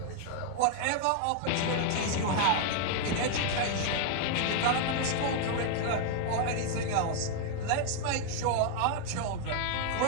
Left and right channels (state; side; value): different; both; correlation 0.00